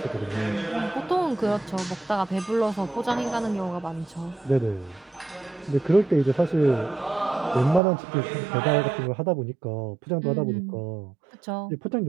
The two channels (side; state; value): left; drops out; at 7.8 s